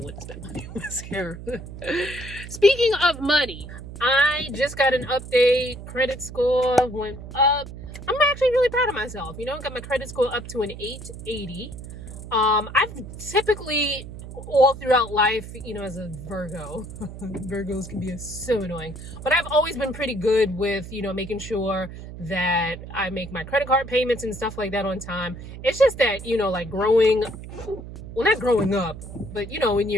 wouldn't spend money on mascara. Speaking of money, I just got an update. Credit score went up. I'm actually really proud of myself. Got my credit score up to an 880. I've typically, all throughout life, as a Virgo, Virgos can be so annoying, but I've always been pretty good with, making sure that I make my credit card payments and stuff like that on time. It's just that, like not growing up, but in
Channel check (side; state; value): right; noise; hum, 12 dB below the sound